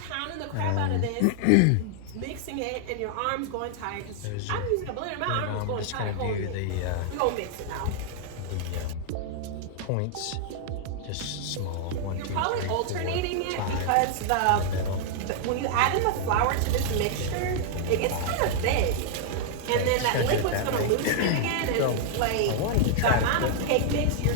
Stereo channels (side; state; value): both; different; correlation 0.00